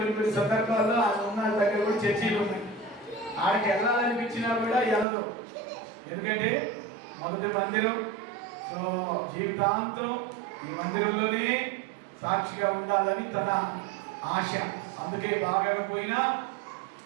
సందర్భాల్లో ఆమె ఉన్న దగ్గర కూడా చర్చీలు ఉన్నాయి. ఆడికి వెళ్ళాలనిపించినా కూడా వెళ్ళదు. ఎందుకంటే మొదటి మందిరం. సో జీవితాంతం ఈ మందిరంలోనే సాక్షిగా ఉండాలని తన ఆశ. అందుకే బాగా పోయినా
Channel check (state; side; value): drops out; left; at 5.1 s